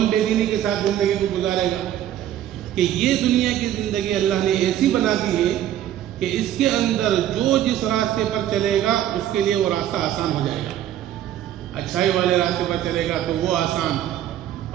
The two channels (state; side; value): quieter; left; 11.6 dB